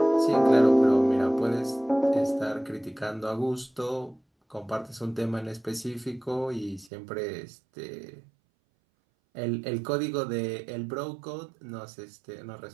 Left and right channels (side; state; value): left; drops out; at 6.9 s